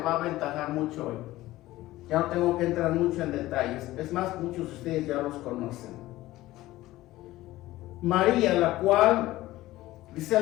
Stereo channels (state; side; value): quieter; right; 16.8 dB